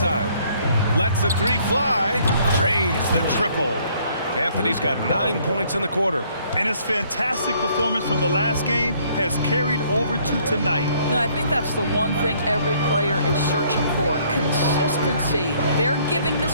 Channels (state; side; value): inverted; both; correlation -0.63